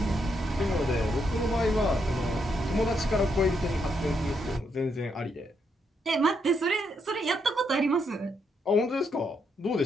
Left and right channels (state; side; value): normal; both; correlation 0.78